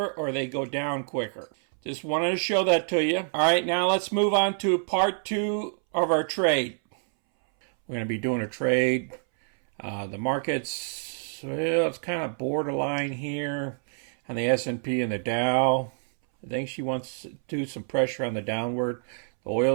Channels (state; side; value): silent; left; 60 dB below the other